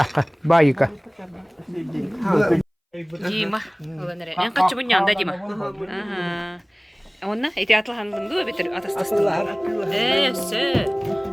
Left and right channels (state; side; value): identical; both; correlation 1.00